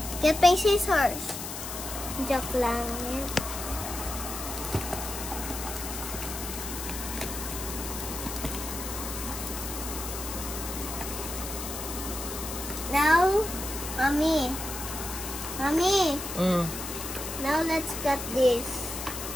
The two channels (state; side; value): noise; left; hiss, 7 dB below the sound